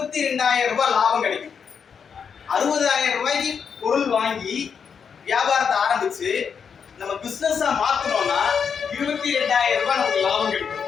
ரூபாய் லாபம் கிடைக்கும். 60,000 ரூபாய்க்கு பொருள் வாங்கி வியாபாரத்தை ஆரம்பிச்சு நம்ம பிசினஸா மாத்தணும்னா 22,000 ரூபாய் நமக்கு லாபம் கிடைக்கும்.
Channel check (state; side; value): quieter; right; 6.7 dB